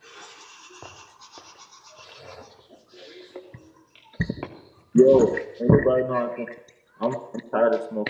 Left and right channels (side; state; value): both; identical; correlation 1.00